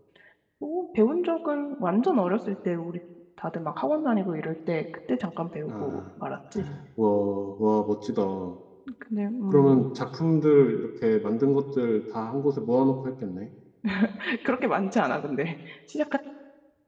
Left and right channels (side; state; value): both; identical; correlation 1.00